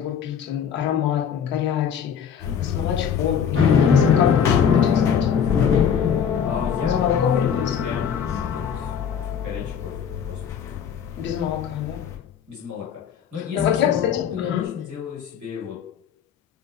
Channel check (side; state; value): right; quieter; 7.8 dB